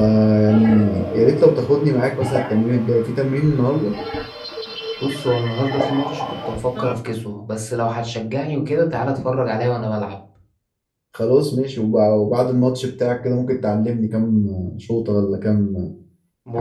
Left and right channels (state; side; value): identical; both; correlation 1.00